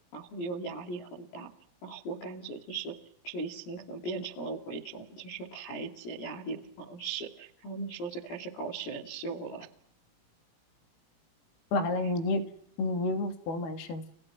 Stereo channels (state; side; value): late; right; 17 ms